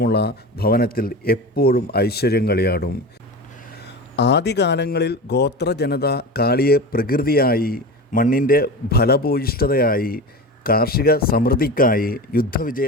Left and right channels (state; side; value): normal; both; correlation 0.28